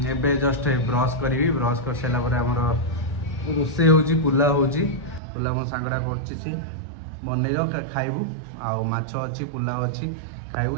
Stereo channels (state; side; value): drops out; left; at 5.2 s